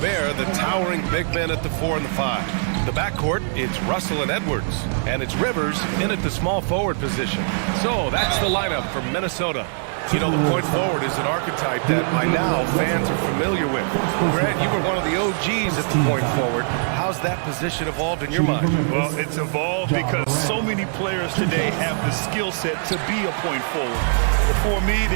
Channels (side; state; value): left; silent; digital silence